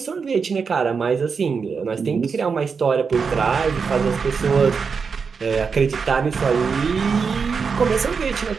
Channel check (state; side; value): quieter; left; 5.5 dB